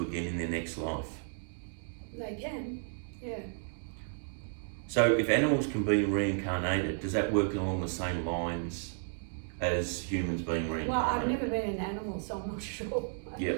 again in their next life? They can, yeah. So if animals can be reincarnated, does that work along the same lines as humans being reincarnated? Well, I've never been an animal, so I'm not sure. Yeah.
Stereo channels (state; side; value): silent; left; digital silence